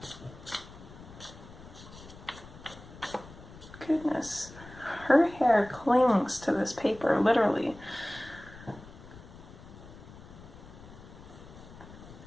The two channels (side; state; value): left; noise; rumble, 17 dB below the sound